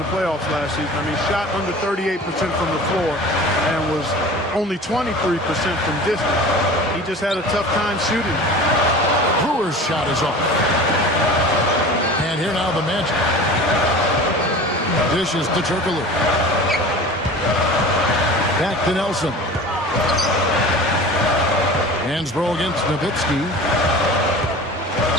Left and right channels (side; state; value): both; normal; correlation 0.38